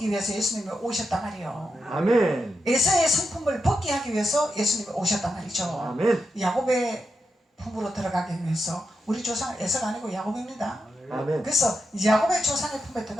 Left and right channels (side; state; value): both; normal; correlation 0.86